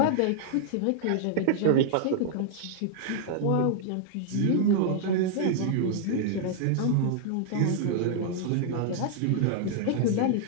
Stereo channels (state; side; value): different; both; correlation -0.01